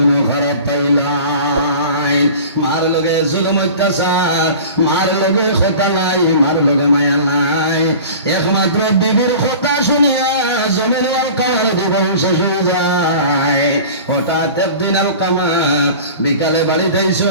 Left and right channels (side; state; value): both; inverted; correlation -0.40